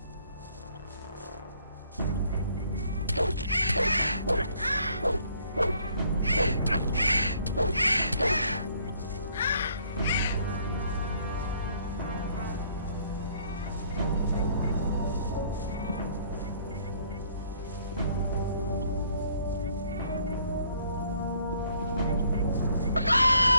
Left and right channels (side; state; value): both; inverted; correlation -0.63